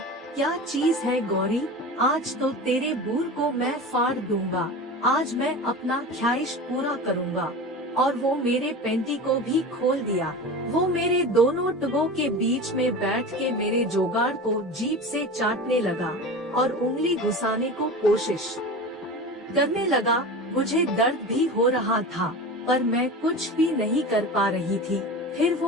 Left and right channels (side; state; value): both; normal; correlation 0.31